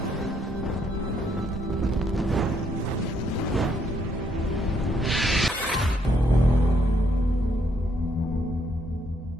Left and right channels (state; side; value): normal; both; correlation 0.72